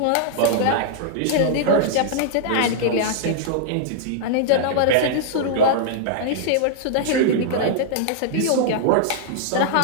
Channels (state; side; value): different; both; correlation -0.01